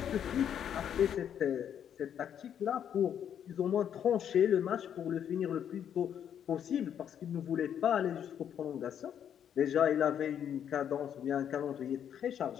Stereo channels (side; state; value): right; quieter; 9.1 dB